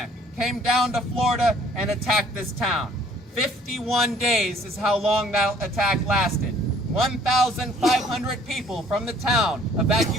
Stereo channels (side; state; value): both; normal; correlation 0.58